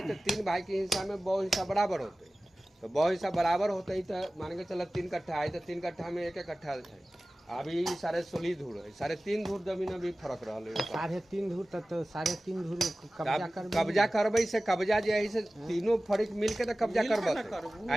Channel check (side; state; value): both; normal; correlation 0.96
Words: तो 3 भाई के हिस्सा में 2 हिस्सा बराबर होते तो 2 हिस्सा बराबर होते ही तो मान के चल 3 कट्ठा है तो 3 कट्ठा में 1 कट्ठा है अभी 16.5 धूर है 3.5 धूर जमीन में भी फर्क रहल है 3.5 धूर तक तो 3.5 धूर कब्जा कर कब्जा करबै से कब्जा जे है से तीनों फरीक मिल के तो कब्जा मिल के करबत ना करबू।